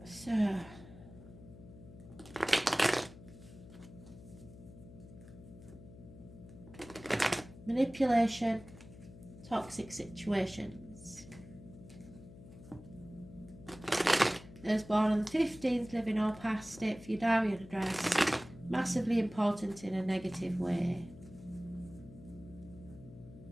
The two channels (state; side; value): noise; left; hum, 18 dB below the sound